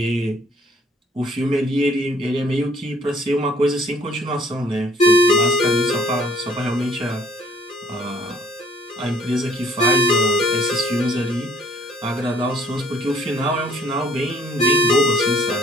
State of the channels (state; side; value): normal; both; correlation 0.61